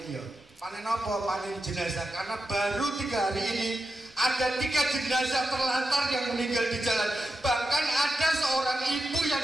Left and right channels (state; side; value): normal; both; correlation 0.89